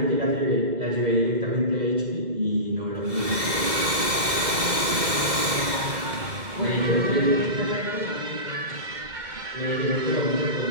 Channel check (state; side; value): late; left; 2.0 ms